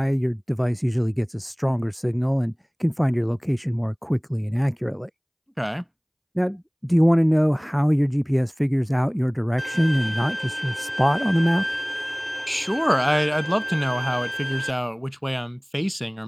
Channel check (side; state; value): both; identical; correlation 1.00